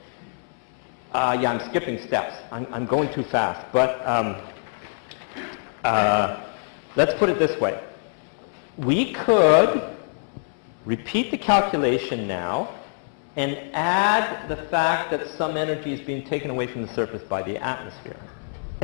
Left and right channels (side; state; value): right; silent; 62 dB below the other